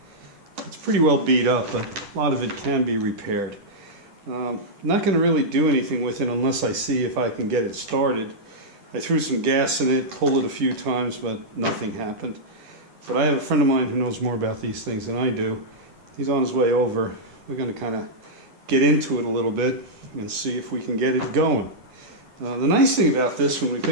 It's pretty well beat up, but a lot of it can be repaired. I'm not going to really do anything with it unless I see if I can get it started. I threw some gas in it, pulled it a few times, but nothing happened. But I have a friend of mine who knows more about these things than I do. He's on his way over. We're going to kind of get into it a little bit and see if we can get it going. The nice thing about this when we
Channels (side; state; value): left; late; 10 ms